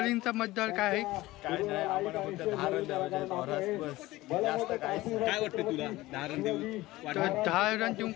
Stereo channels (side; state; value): right; quieter; 18.3 dB